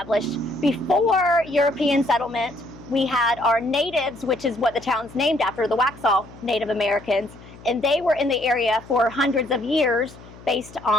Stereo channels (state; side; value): noise; left; hum, 20 dB below the sound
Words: Before European settlement, we had our natives, which is what the town's named after, the Waxhaw Native Americans, and they were in the area for hundreds of years based